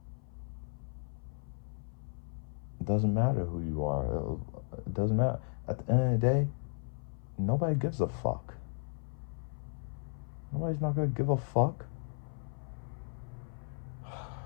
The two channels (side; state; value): right; silent; 54 dB below the other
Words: It doesn't matter who you are. It doesn't matter. At the end of the day, nobody gives a fuck. Nobody's not gonna give a fuck.